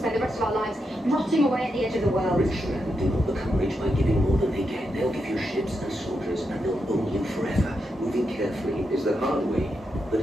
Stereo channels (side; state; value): both; normal; correlation 0.84